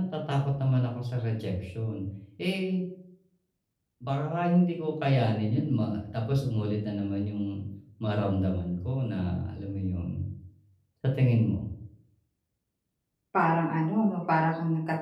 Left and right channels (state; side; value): identical; both; correlation 1.00